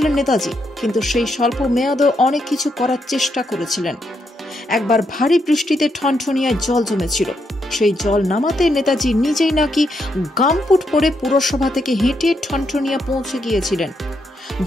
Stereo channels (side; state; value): both; normal; correlation 0.79